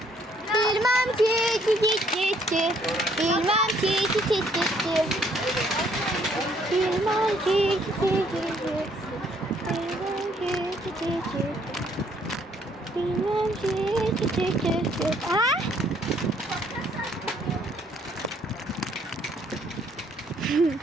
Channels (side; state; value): both; normal; correlation 0.65